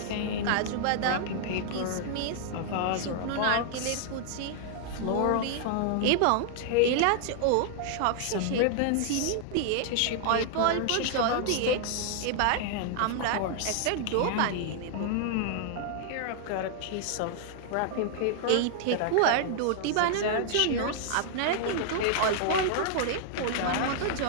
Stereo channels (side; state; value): both; different; correlation -0.01